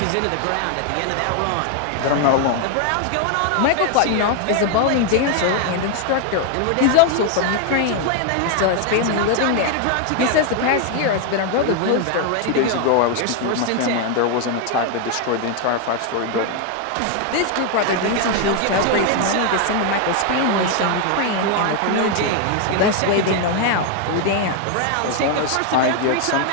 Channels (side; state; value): both; different; correlation 0.01